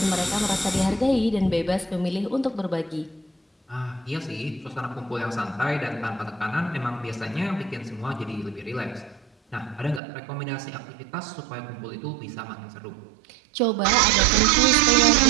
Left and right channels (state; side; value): drops out; left; at 10.0 s